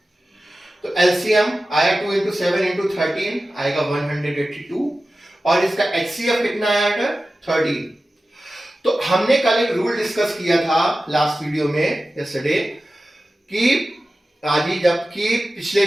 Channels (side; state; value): both; normal; correlation 0.95